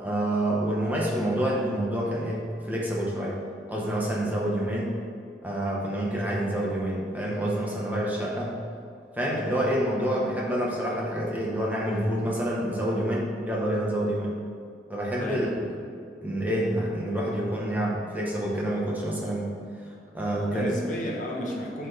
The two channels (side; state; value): both; normal; correlation 0.68